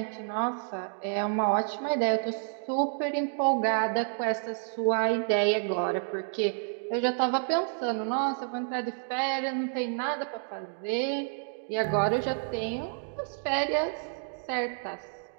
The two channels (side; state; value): left; silent; digital silence